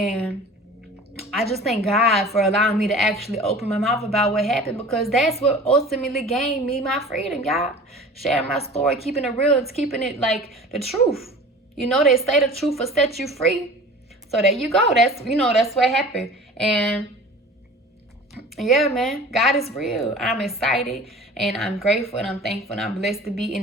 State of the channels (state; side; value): normal; both; correlation 0.41